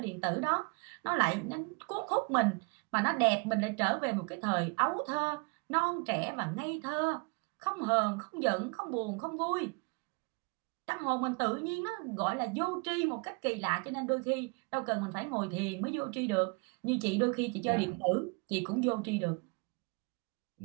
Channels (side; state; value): left; quieter; 32.5 dB